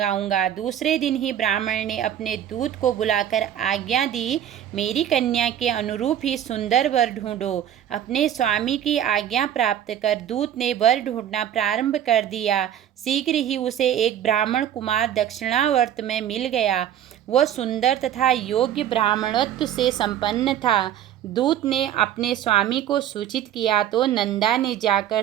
दूसरे दिन ही ब्राह्मण ने अपने दूत को बुलाकर आज्ञा दी, मेरी कन्या के अनुरूप ही सुंदर वर ढूंढो। अपने स्वामी की आज्ञा प्राप्त कर दूत ने वर ढूंढना प्रारंभ कर दिया। शीघ्र ही उसे एक ब्राह्मण कुमार दक्षिणावर्त में मिल गया। वह सुंदर तथा योग्य ब्राह्मणत्व से संपन्न था। दूत ने अपने स्वामी को सूचित किया तो नंदा ने जाकर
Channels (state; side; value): quieter; left; 10.6 dB